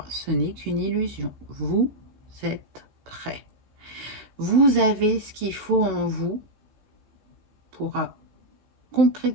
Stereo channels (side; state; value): left; late; 15 ms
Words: ce n'est qu'une illusion. Vous êtes prêt. Vous avez ce qu'il faut en vous pour